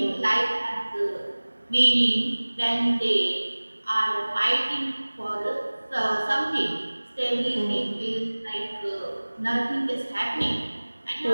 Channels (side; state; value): both; inverted; correlation -1.00